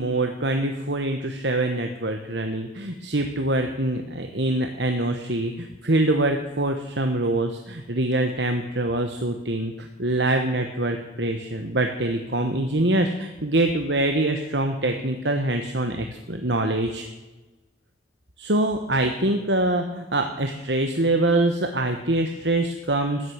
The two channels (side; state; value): both; normal; correlation 0.29